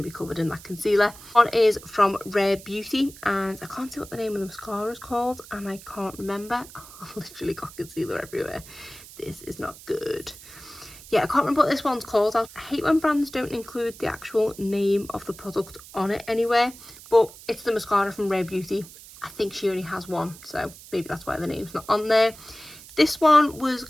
to be covered in that concealer. One is from Rare Beauty, and I can't see what the name of the mascara is called, and I can't remember. I've literally got concealer everywhere. This is not good. Yeah, I can't remember what this one's called. I hate when brands don't include the actual name of the product on it anywhere, but it's the mascara from Rare Beauty. I think she only has one, so maybe that's why the name's not on there. This one was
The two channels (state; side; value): noise; right; hiss, 18 dB below the sound